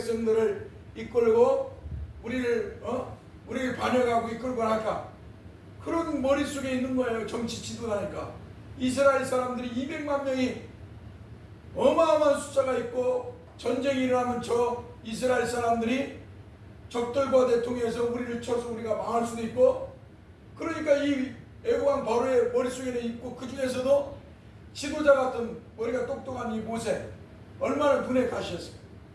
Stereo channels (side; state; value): both; identical; correlation 1.00